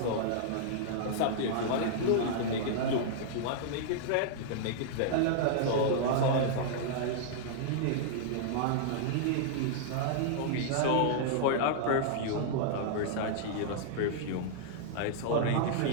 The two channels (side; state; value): both; different; correlation -0.01